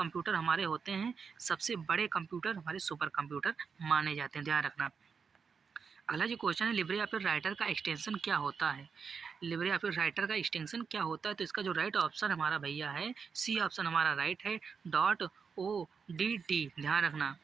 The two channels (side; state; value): left; quieter; 5.8 dB